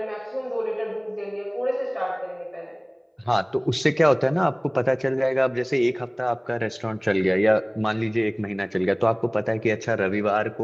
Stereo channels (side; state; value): both; identical; correlation 1.00